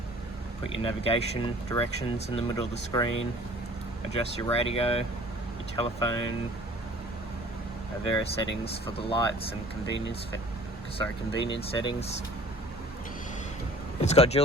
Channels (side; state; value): both; normal; correlation 0.49